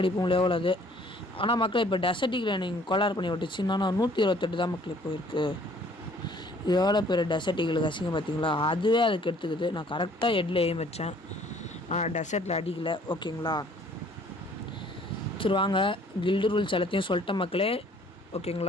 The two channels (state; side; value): normal; both; correlation 0.57